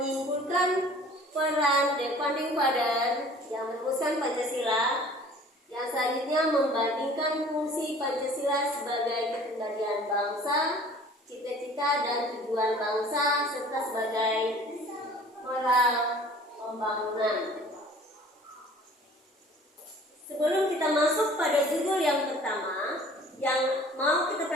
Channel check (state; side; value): normal; both; correlation 0.49